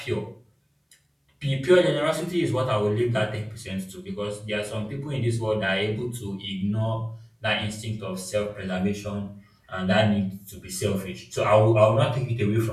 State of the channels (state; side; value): identical; both; correlation 1.00